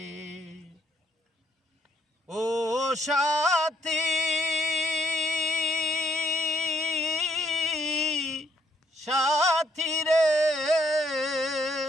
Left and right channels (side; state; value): both; normal; correlation 0.70